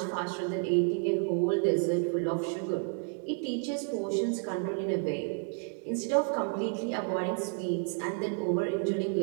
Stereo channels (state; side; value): quieter; left; 40.0 dB